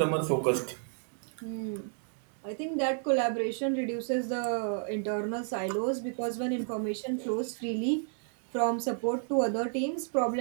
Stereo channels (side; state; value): left; silent; 57 dB below the other